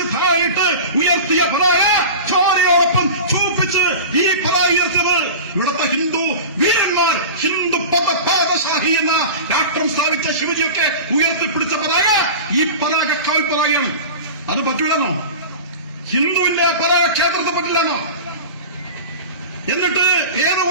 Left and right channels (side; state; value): both; inverted; correlation -0.32